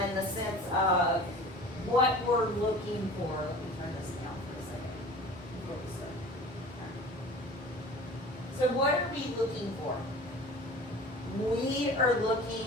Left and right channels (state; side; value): normal; both; correlation 0.40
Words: in the sense of what we're looking for. Let me turn this down for a second. So what are we looking for? We are looking